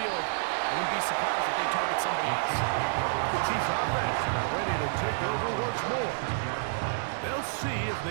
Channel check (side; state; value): left; silent; digital silence